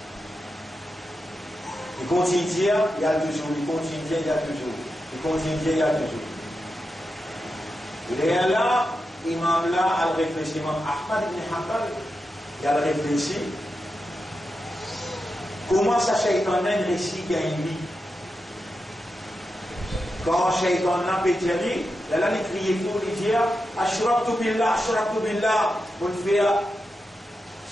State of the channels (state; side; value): normal; both; correlation 0.89